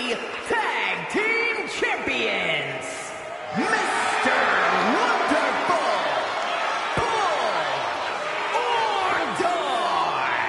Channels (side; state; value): both; identical; correlation 1.00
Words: Tag Team Champions, Mr. Wonderful,